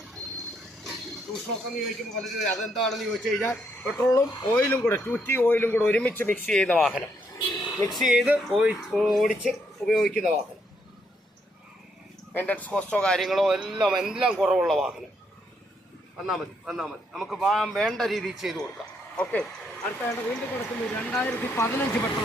എന്ന് ചോദിക്കുമ്പോൾ പലരും അതെന്താണെന്ന് ചോദിച്ചു കഴിഞ്ഞാൽ പെട്രോളും ഓയിലും കൂടെ 2T ഓയിലും കൂടെ ഒരുമിച്ച് മിക്സ് ചെയ്യുന്ന വാഹനം, മിക്സ് ചെയ്ത് ഓടിച്ച് ഉപയോഗിക്കുന്ന വാഹനം. മെയിൻ്റനൻസ് കോസ്റ്റോ കാര്യങ്ങളോ എല്ലാം കുറവുള്ള വാഹനം. വന്നാൽ മതി നമുക്ക് വേണ്ട രീതിയിൽ ചെയ്തു കൊടുക്കാം. ഓക്കെ, അടുത്തായിട്ട് വീണ്ടും കൊടുക്കുന്നത് 2015 പെട്രോൾ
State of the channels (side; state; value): both; normal; correlation 0.75